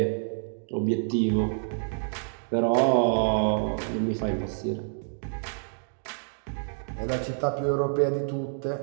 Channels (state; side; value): silent; left; digital silence